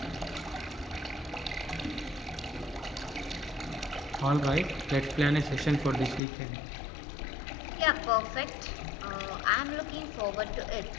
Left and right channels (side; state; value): right; drops out; at 6.2 s